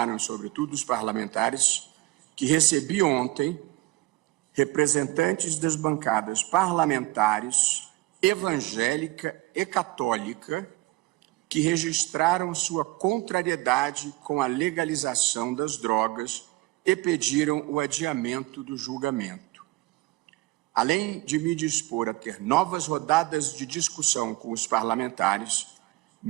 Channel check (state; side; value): quieter; left; 20.2 dB